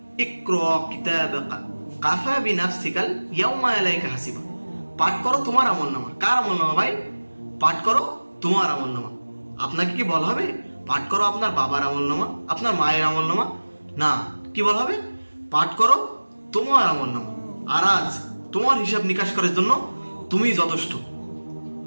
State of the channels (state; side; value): inverted; both; correlation -1.00